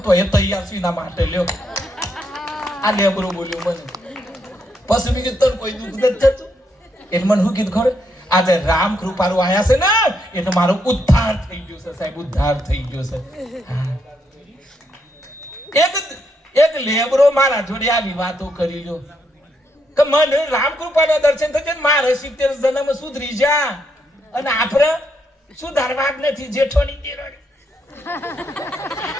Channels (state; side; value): normal; both; correlation 0.77